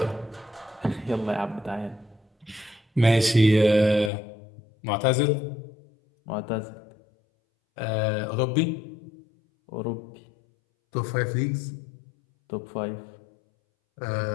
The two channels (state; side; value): drops out; right; at 4.1 s